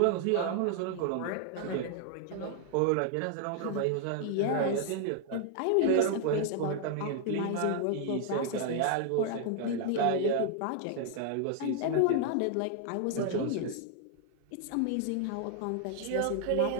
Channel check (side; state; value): both; different; correlation 0.00